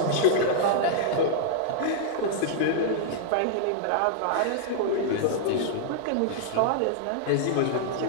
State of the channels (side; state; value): both; different; correlation -0.01